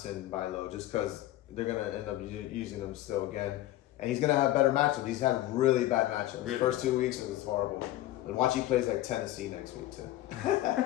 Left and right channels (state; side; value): quieter; right; 15.1 dB